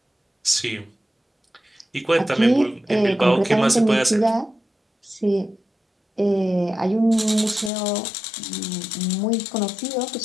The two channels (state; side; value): drops out; right; at 7.7 s